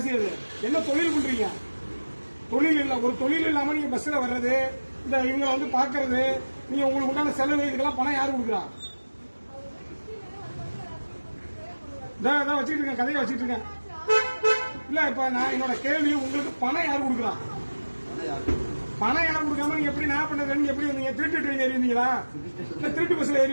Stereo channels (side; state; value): both; inverted; correlation -1.00